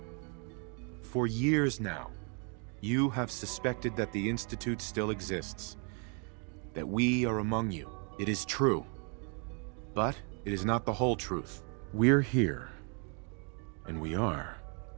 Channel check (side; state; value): left; quieter; 37.6 dB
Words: For years now, you have suspected that the Institute still exists. That we are among you. It is true. But it is not the whole truth. We're here. And we are.